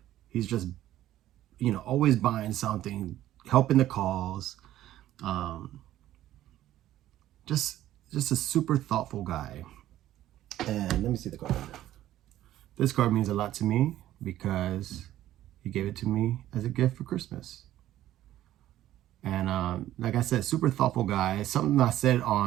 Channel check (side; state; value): left; quieter; 13.5 dB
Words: He's just, always buying something, helping the cause. Just a super thoughtful guy. And let me see the card. This card means a lot to me because he gave it to me as a gift for Christmas. And like I said, super thoughtful guy. Something I said